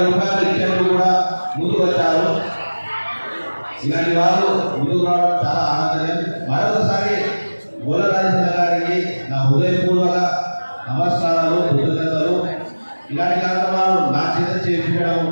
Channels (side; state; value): both; inverted; correlation -1.00